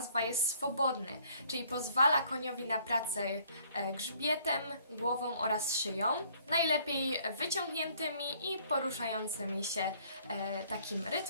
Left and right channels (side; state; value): both; inverted; correlation -0.61